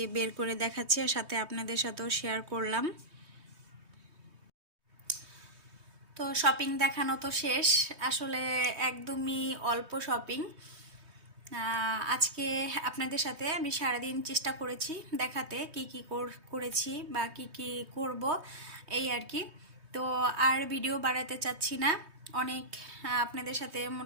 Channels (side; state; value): left; late; 3.2 ms